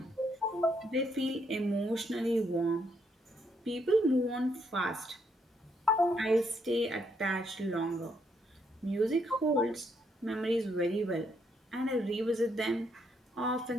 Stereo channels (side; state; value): both; normal; correlation 0.74